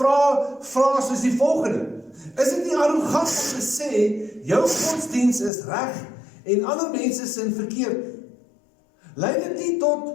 soos die volgende. Is dit nie arrogant om te sê, jou godsdiens is reg en ander mense sin verkeerd? Lei dit nie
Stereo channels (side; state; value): right; drops out; at 5.5 s